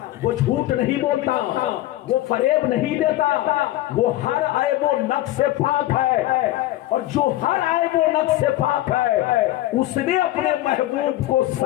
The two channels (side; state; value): right; quieter; 15.4 dB